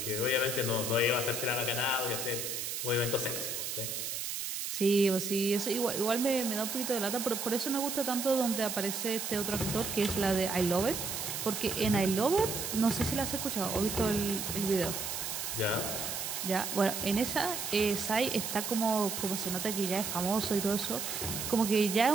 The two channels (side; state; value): right; noise; hiss, 4 dB below the sound